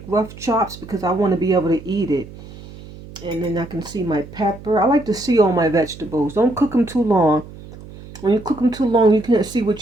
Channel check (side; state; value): right; noise; hum, 17 dB below the sound